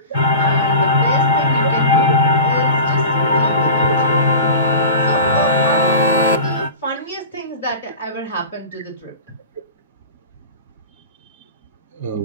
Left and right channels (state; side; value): inverted; both; correlation -0.35